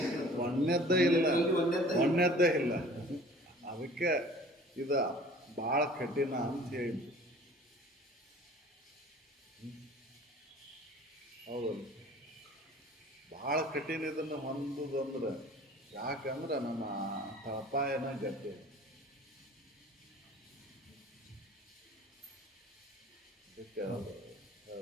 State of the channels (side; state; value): both; normal; correlation 0.47